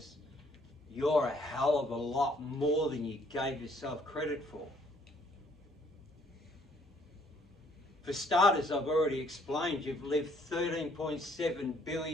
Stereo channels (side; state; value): both; normal; correlation 0.64